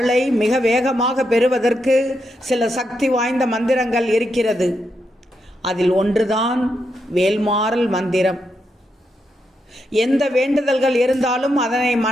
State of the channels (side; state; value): both; normal; correlation 0.83